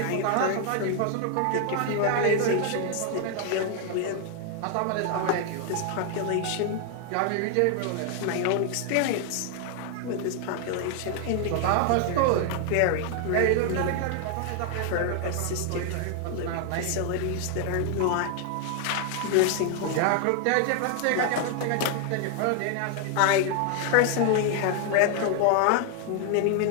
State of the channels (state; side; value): different; both; correlation 0.00